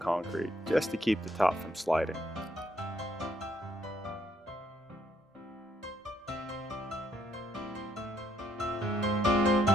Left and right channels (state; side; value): normal; both; correlation 0.71